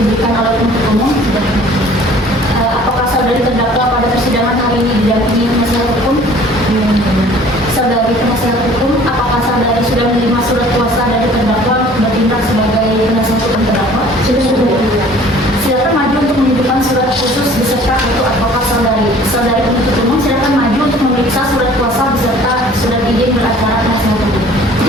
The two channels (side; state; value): both; normal; correlation 0.51